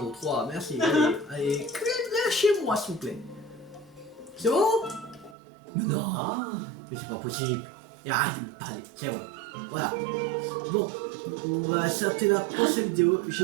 3, merci, allez, allez, lâchez-moi, s'il vous plaît. C'est bon? Mais non, mais c'est pas possible. Et arrête de me parler, c'est bon. Voilà. Bon, on va s'arrêter la prochaine vidéo.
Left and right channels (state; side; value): drops out; left; at 5.4 s